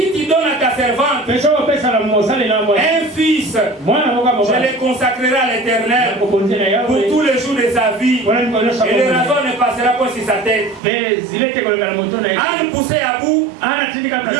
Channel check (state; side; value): drops out; left; at 10.8 s